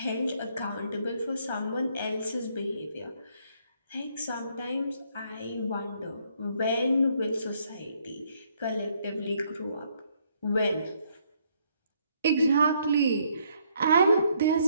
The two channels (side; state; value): both; inverted; correlation -0.70